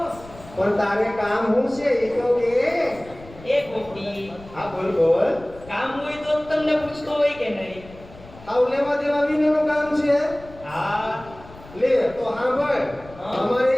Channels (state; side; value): noise; left; rumble, 20 dB below the sound